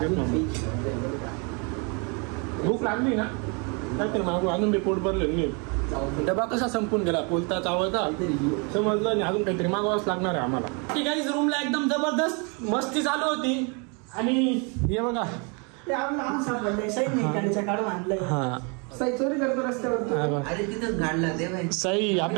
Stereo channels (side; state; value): left; quieter; 33.7 dB